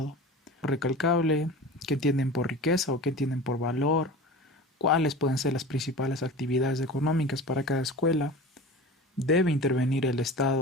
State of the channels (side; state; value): both; normal; correlation 0.35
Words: Recalcable, qué entienden por riqueza o qué entienden por valor, cuáles pueden ser las principales actividades económicas para cada escuela. ¿Debe intervenir el